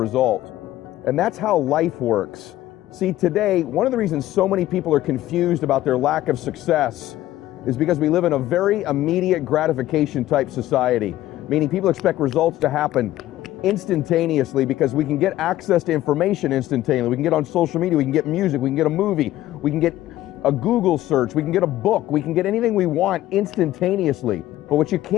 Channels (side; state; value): right; quieter; 14.7 dB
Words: And that's how life works. See, today, one of the reasons so many people are confused about their lack of success is because we live in a very immediate gratification type society, meaning people expect results to happen instantaneously because we can get access to information instantaneously. We can get on social media, we can get music, we can get a movie, we can get a Google search, we can get a book, we can get anything we want instantaneously. But what you